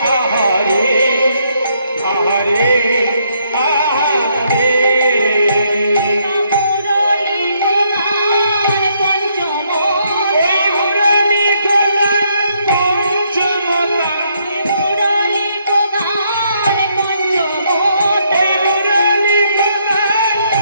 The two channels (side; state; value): both; inverted; correlation -0.73